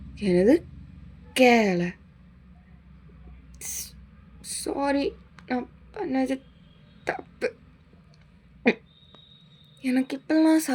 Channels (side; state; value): both; identical; correlation 1.00